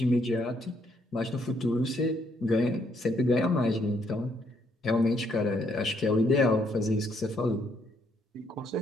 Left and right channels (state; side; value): normal; both; correlation 0.72